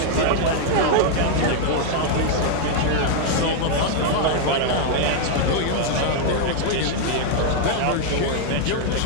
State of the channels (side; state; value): both; different; correlation 0.00